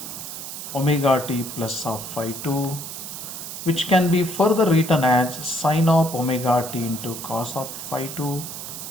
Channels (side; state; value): right; noise; hiss, 9 dB below the sound